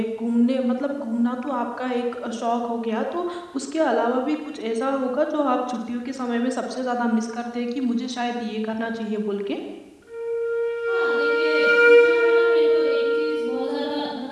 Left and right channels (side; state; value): both; identical; correlation 1.00